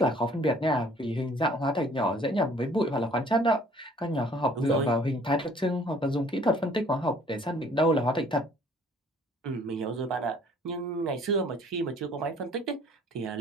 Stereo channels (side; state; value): both; normal; correlation 0.56